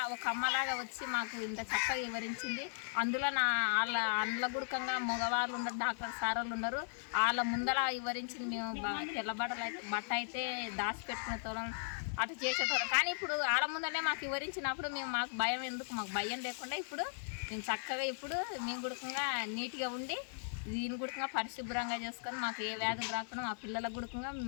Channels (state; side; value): silent; right; digital silence